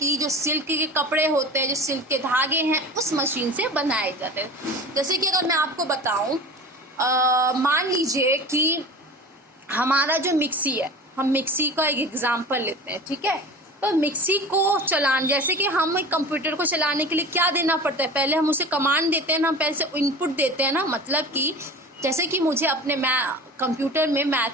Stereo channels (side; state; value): both; normal; correlation 0.36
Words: जो सिल्क के कपड़े होते हैं, जो सिल्क के धागे हैं, उस मशीन से बनाए जाते हैं। जैसे कि अगर मैं आपको बताऊं, मान लीजिए कि हमारा जो मिक्सी है, हम मिक्सी का एक एग्जाम्पल लेते हैं। ठीक है, तो मिक्सी को चलाने, जैसे कि हम एक कंप्यूटर को चलाने के लिए क्या देना पड़ता है, पहले हम उसे कमांड देते हैं ना, हम पहले से इनपुट देते हैं ना। मतलब कि जैसे कि मुझे अपने कंप्यूटर में